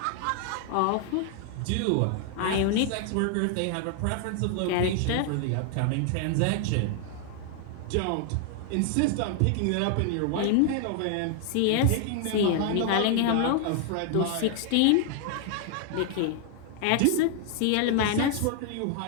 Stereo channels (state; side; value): different; both; correlation 0.00